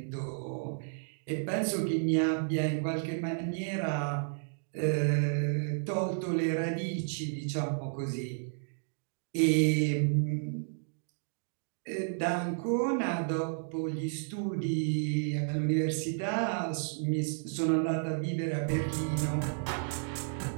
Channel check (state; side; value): silent; left; digital silence